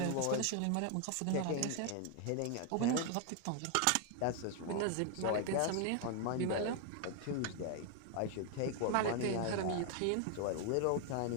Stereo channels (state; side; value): different; both; correlation 0.01